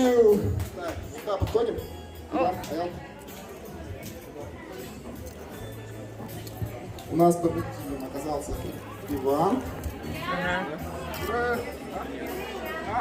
Так, сюда подходим. Иван, Аял. У нас победителем оказался Иван.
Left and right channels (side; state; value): both; identical; correlation 1.00